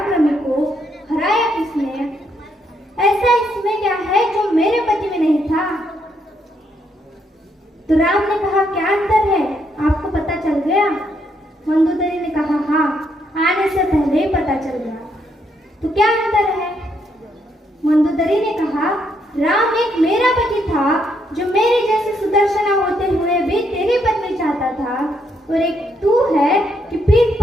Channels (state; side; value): normal; both; correlation 0.75